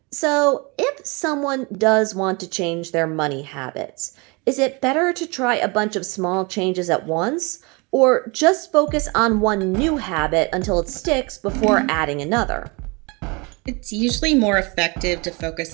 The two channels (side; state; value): left; quieter; 28.5 dB